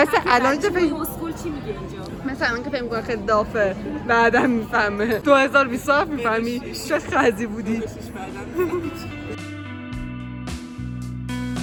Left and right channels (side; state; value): both; identical; correlation 1.00